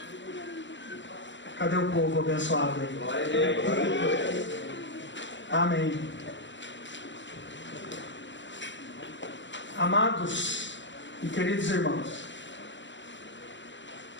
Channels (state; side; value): late; right; 0.54 ms